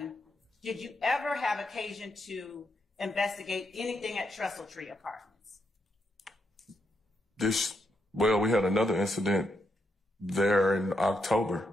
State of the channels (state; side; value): normal; both; correlation 0.80